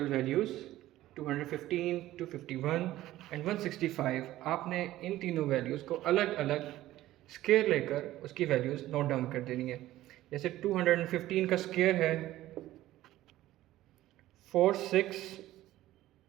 वैल्यूज़ 215, 251 एंड 165, आपने इन तीनों वैल्यूज़ को अलग अलग स्क्वायर लेकर उसकी वैल्यूज़ नोट डाउन कर देनी है। जैसे 215 का स्क्वायर है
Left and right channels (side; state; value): left; quieter; 15.1 dB